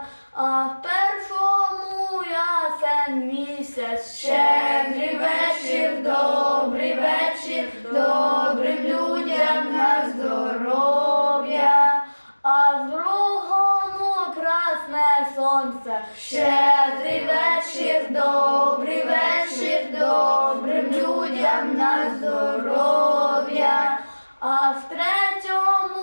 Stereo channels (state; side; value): inverted; both; correlation -1.00